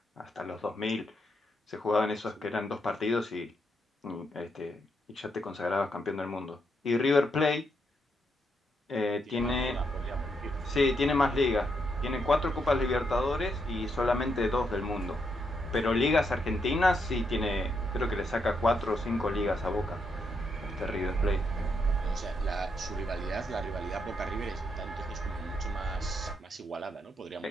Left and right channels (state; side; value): normal; both; correlation 0.79